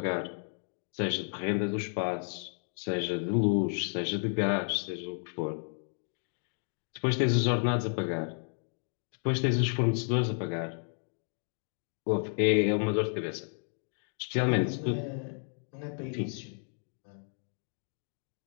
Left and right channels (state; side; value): silent; right; 56 dB below the other